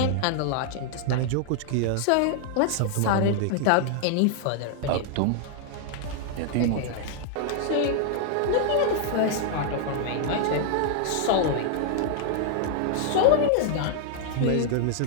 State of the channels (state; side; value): different; both; correlation 0.00